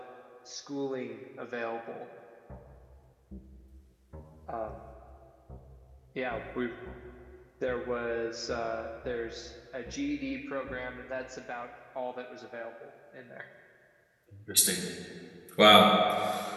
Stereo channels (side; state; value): both; identical; correlation 1.00